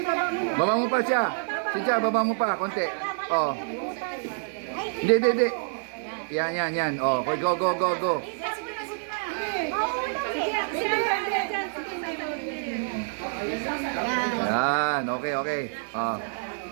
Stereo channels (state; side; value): silent; left; 60 dB below the other